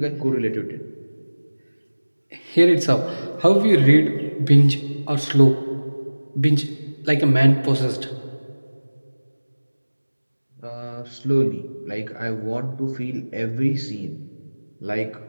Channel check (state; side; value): inverted; both; correlation -1.00